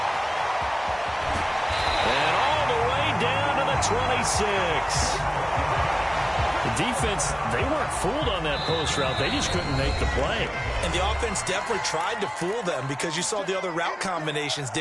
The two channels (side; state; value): both; identical; correlation 1.00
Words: And all the way down to the 26. The defense, they weren't fooled on that post route. They just couldn't make the play. And the offense definitely tried to fool them because you saw the other route combinations,